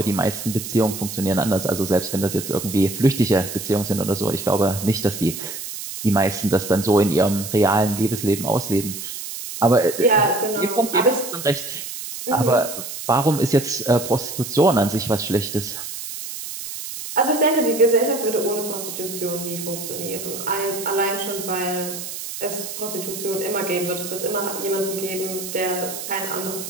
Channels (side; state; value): right; noise; hiss, 8 dB below the sound